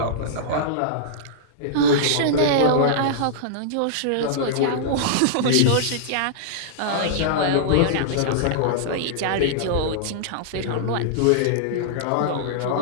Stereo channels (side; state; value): both; different; correlation -0.02